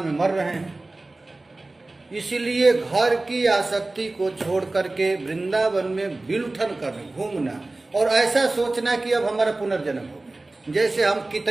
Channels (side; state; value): left; quieter; 3.0 dB